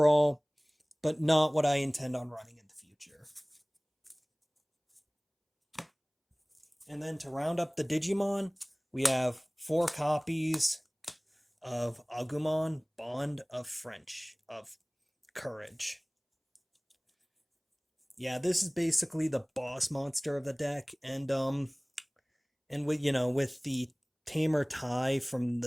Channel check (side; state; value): both; identical; correlation 1.00